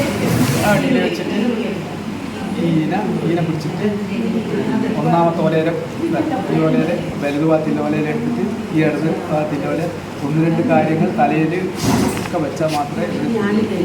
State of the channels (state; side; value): identical; both; correlation 1.00